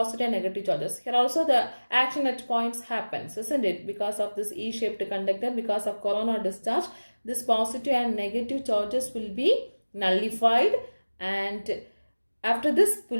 and negative charges. Here also the action at points happens, isn't it? Because of this E-shaped conductor, because of coronal discharge, this positive and negative charges will be nullified and after this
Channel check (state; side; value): inverted; both; correlation -1.00